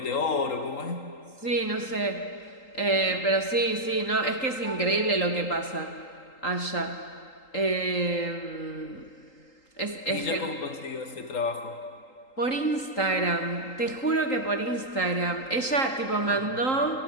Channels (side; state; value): right; late; 3.8 ms